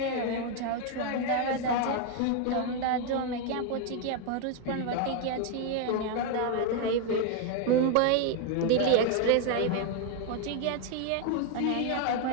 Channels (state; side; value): different; both; correlation 0.01